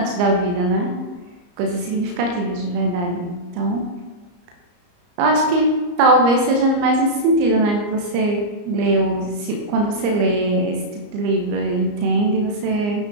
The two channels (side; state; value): left; late; 34 ms